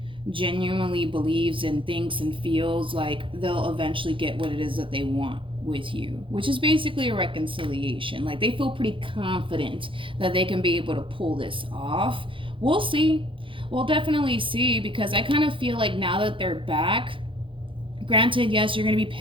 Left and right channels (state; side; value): late; left; 0.25 ms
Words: genuinely believes and thinks and feels like they'll eventually get what it is that they want with you, which is basically a reconciliation. Like, they feel pretty confident that they can be able to pull this off. We'll see. We'll definitely see, because I kind of feel like now that they're back, granted, yes, you're going to be